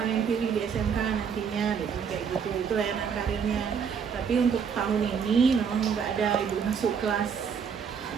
pilih di SMK nantinya, biasanya kayak gitu. Itu layanan karirnya. Tapi untuk tahun ini memang nggak ada ibu masuk kelas.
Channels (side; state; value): left; quieter; 6.7 dB